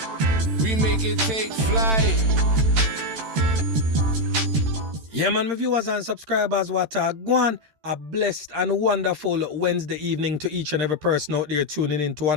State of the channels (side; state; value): left; late; 13 ms